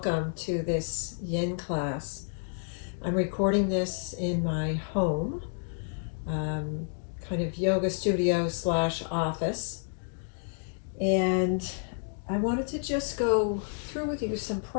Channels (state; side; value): silent; right; digital silence